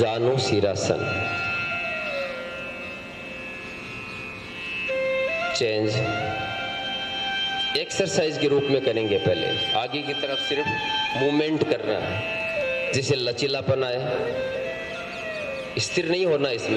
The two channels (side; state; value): both; identical; correlation 1.00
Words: शीरासन। चेंज, एक्सरसाइज के रूप में करेंगे। पहले आगे की तरफ सिर्फ मूवमेंट करना है, जिसे लचीलापन आए, स्थिर नहीं होना,